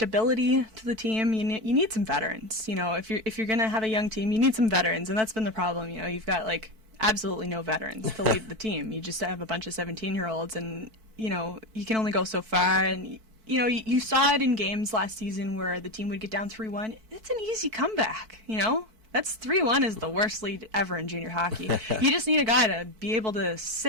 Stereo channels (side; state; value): left; late; 4.5 ms